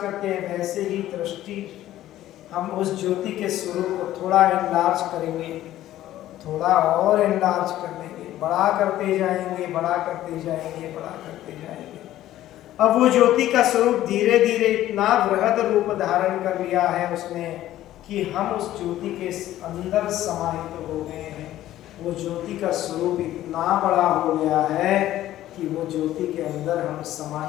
करते हैं वैसे ही दृष्टि हम उस ज्योति के स्वरूप को थोड़ा एनलार्ज करेंगे, थोड़ा और एनलार्ज कर लेंगे, बड़ा करते जाएंगे, बड़ा करते जाएंगे, बड़ा करते जाएंगे। अब वो ज्योति का स्वरूप धीरे धीरे इतना बृहद रूप धारण कर लिया है उसने कि हम उस ज्योति के अंदर समाहित हो गए हैं। वो ज्योति का स्वरूप इतना बड़ा हो गया है कि वो ज्योति के अंदर हम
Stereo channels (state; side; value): quieter; right; 13.7 dB